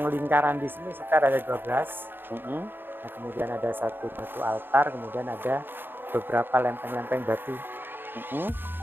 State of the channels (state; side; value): late; left; 0.097 ms